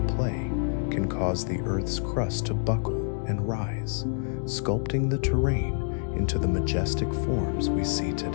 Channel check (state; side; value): silent; right; digital silence